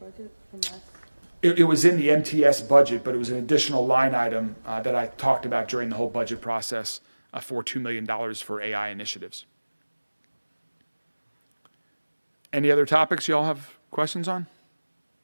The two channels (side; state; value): both; inverted; correlation -1.00